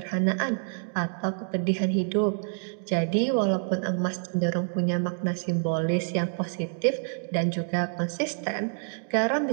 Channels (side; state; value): left; silent; digital silence